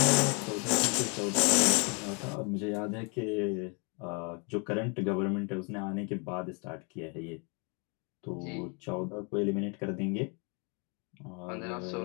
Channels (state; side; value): quieter; right; 34.1 dB